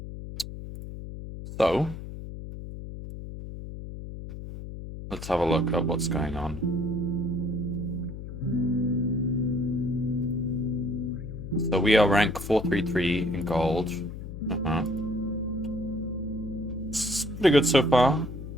So let's have a look at what's going on. So we are rank 433 in gold. It's pretty good so far.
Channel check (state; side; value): noise; left; hum, 9 dB below the sound